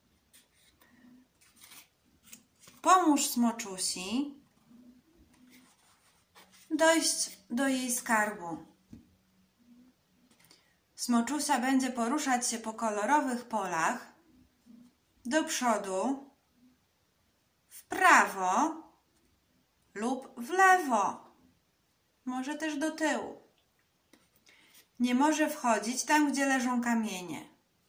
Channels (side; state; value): both; identical; correlation 1.00